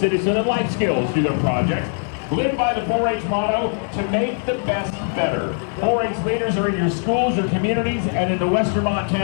and life skills through their projects. Live by the 4-H motto, to make the best better. 4-H leaders are in your schools, your communities, and in the Western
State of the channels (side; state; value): right; silent; 55 dB below the other